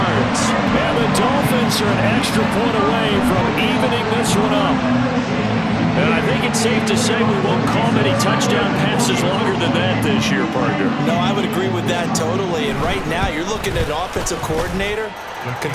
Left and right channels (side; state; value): both; identical; correlation 1.00